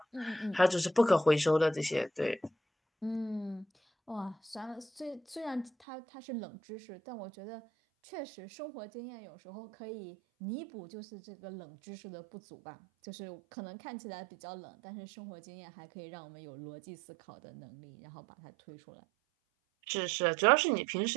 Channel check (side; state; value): left; drops out; at 5.7 s